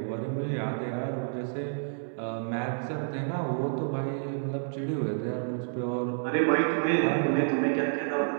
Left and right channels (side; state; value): left; silent; digital silence